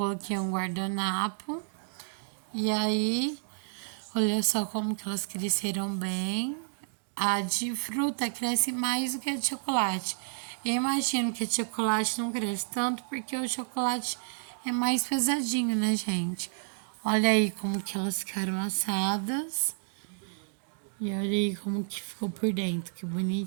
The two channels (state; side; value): silent; left; digital silence